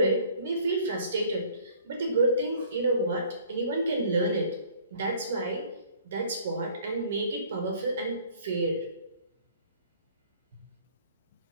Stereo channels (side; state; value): both; inverted; correlation -0.55